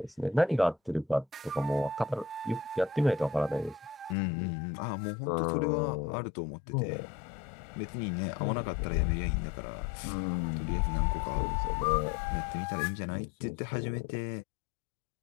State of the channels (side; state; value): right; drops out; at 4.2 s